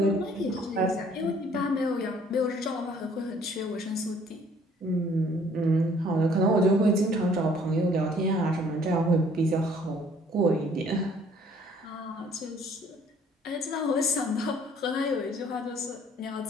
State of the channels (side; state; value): both; normal; correlation 0.58